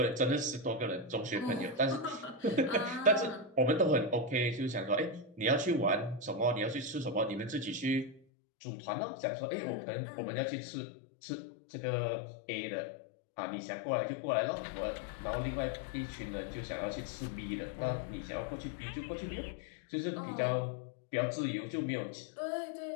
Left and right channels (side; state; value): right; drops out; at 8.2 s